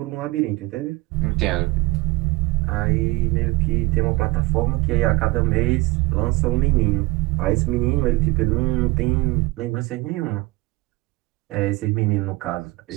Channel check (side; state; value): left; quieter; 21.9 dB